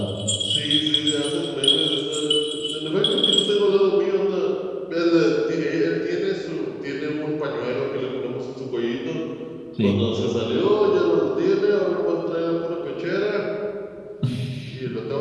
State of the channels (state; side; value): identical; both; correlation 1.00